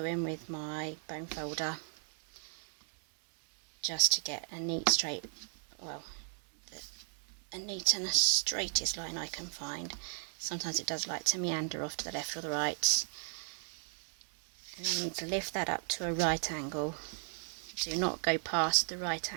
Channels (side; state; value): left; silent; 54 dB below the other